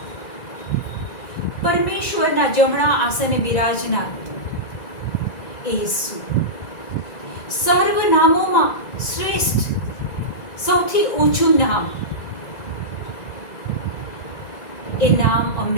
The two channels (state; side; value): late; right; 1.9 ms